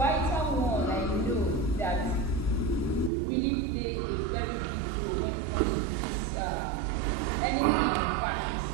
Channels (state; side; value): drops out; left; at 3.1 s